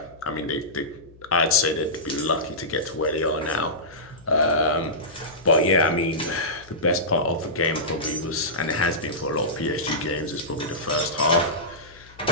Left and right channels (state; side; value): noise; left; hum, 24 dB below the sound